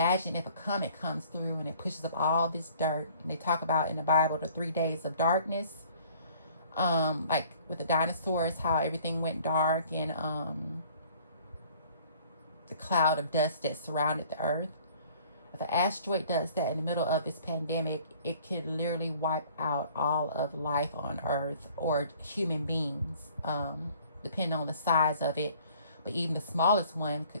if a comet comes through and it pushes up all this dirt. And they talk about in the Bible the 3 days of darkness, like with the dinosaurs, how everything went dark, and the cloud of dust that surrounded the earth. If an asteroid does that in the middle of this pandemic, it could literally wipe out all of life on Earth, or human beings, depending on the size of it. But even the smallest one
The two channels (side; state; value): both; inverted; correlation -0.54